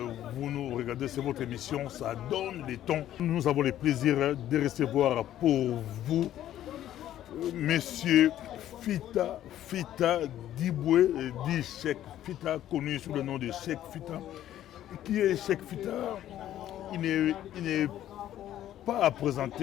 vous nous regardez. C'est votre émission, ça donne les tons. Nous avons le plaisir de recevoir pour vous Monsieur Fita Diboué, dit Cheikh Fita, connu sous le nom de Cheikh Fita. Qui est Cheikh Fita? Il n'est pas à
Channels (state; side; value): quieter; right; 12.2 dB